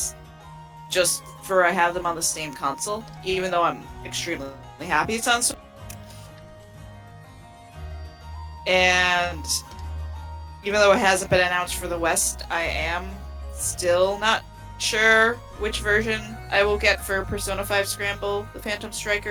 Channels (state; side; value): identical; both; correlation 1.00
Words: I have them on the same console, even though I'm extremely happy it's on Switch. And even though it hasn't been announced for the West, I am still not sure which version I will get for Persona 5 Scramble, the Phantom